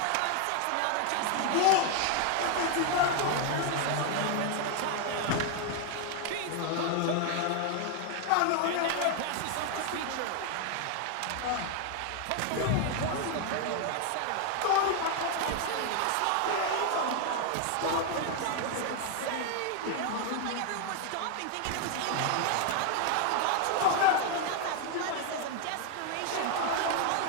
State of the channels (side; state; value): both; different; correlation 0.01